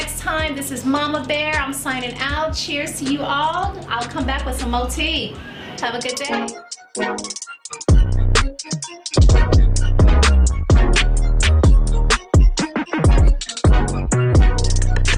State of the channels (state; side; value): identical; both; correlation 1.00